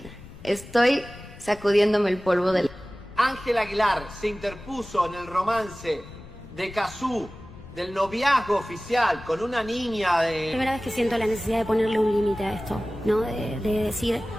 Estoy sacudiéndome el polvo del... Ángela Aguilar se interpuso en el romance de Kazoo, del noviazgo oficial con una niña de... Primera vez que siento la necesidad de ponerle un límite a esto, ¿no? De decir,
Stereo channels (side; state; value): left; noise; rumble, 18 dB below the sound